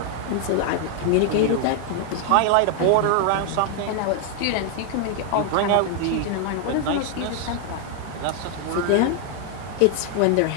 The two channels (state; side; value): different; both; correlation 0.00